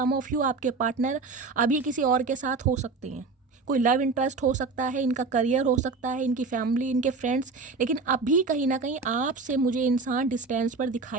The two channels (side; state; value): left; quieter; 4.2 dB